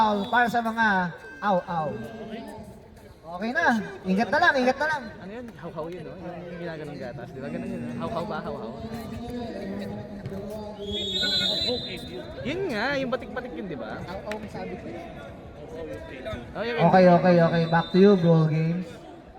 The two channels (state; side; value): identical; both; correlation 1.00